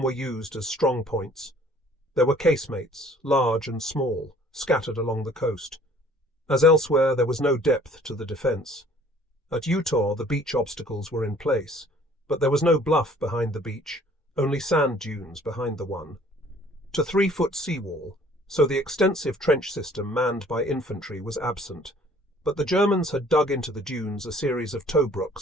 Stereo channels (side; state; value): both; normal; correlation 0.55